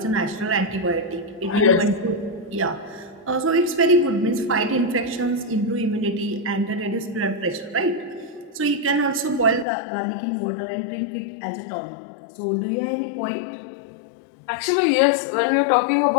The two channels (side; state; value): right; drops out; at 9.7 s